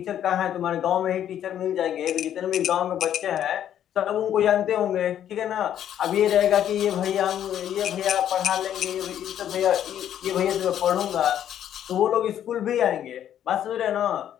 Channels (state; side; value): quieter; right; 10.4 dB